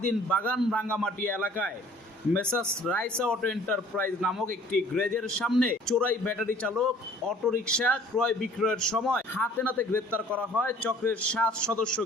বাগান রাঙ্গামাটি এলাকায় মেসার্স রাইসা অটো এন্টারপ্রাইজ নামক একটি গ্যারেজের সামনে চোরাই ব্যাটারি চালক অটোরিকশা ক্রয় বিক্রয়ের সময় হাতে নাতে গ্রেপ্তার করা হয় চক্রের ৭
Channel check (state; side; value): normal; both; correlation 0.53